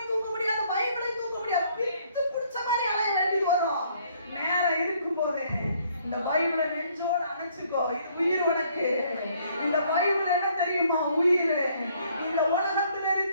தூக்க முடியாது, பைபிளையும் தூக்க முடியாது, பித்து பிடிச்ச மாதிரி அலைய வேண்டியது வரும். நேரம் இருக்கும் போது இந்த பைபிளை நெஞ்சோட அணைச்சுக்கோ. இது உயிர் உனக்கு. இந்த பைபிள் என்ன தெரியுமா? உயிர். இந்த உலகத்தில்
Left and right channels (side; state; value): both; inverted; correlation -0.64